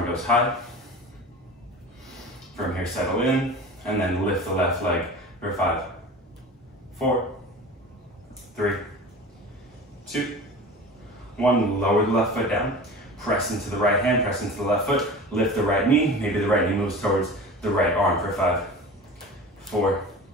goes high. From here, settle in. And then lift the left leg for 5, 4, 3, 2, 1. Lower the left foot down. Press into the right hand. Press into the left foot. Lift the right knee. Maybe the right knee moves towards the right arm for 5, 4,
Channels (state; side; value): normal; both; correlation 0.36